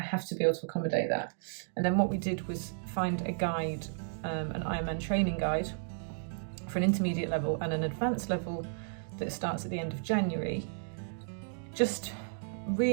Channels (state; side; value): silent; left; digital silence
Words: to be able to accommodate that. And then what we did was find a guide, an IronMan training guide for an intermediate level and an advanced level that starts at the end of January, just